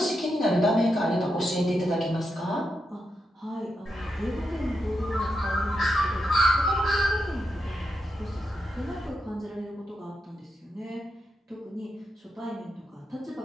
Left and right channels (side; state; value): both; normal; correlation 0.85